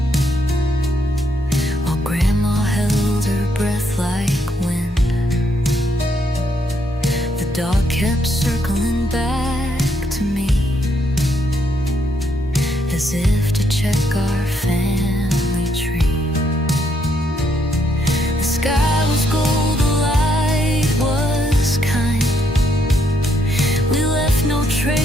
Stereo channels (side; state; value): both; normal; correlation 0.74